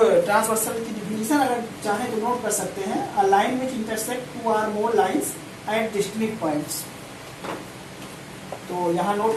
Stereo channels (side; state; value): both; identical; correlation 1.00